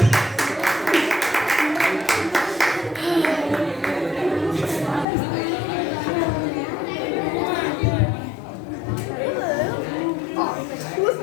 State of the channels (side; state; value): right; drops out; at 5.1 s